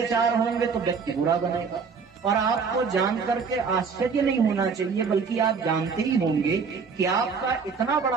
होंगे तो व्यक्ति बुरा बनेगा। और आपको जान करके आश्चर्य नहीं होना चाहिए, बल्कि आप जानते ही होंगे कि आपका इतना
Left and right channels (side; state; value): left; quieter; 5.5 dB